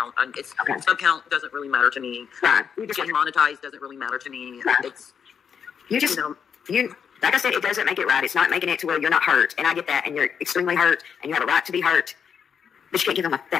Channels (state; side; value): quieter; right; 7.2 dB